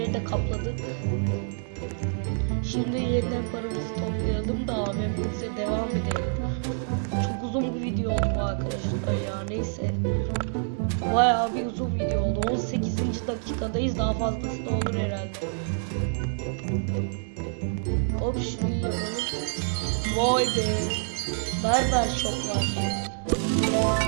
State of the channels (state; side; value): silent; left; digital silence